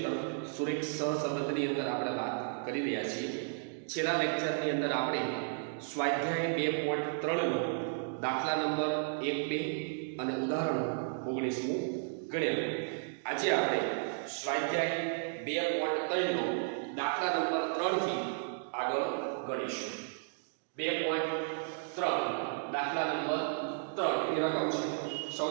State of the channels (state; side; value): silent; left; digital silence